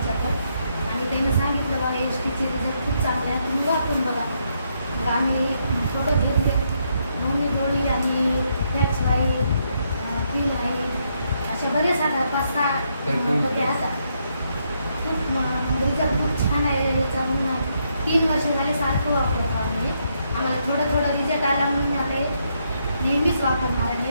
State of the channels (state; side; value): inverted; both; correlation -0.77